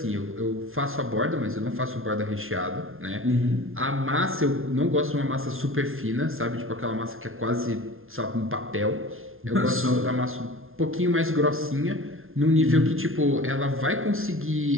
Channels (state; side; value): late; left; 0.61 ms